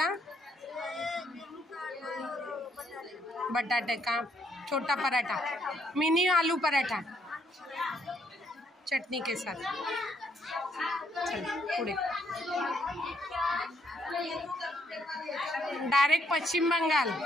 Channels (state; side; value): normal; both; correlation 0.71